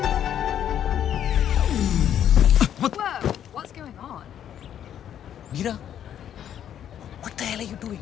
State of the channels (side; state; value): right; quieter; 10.0 dB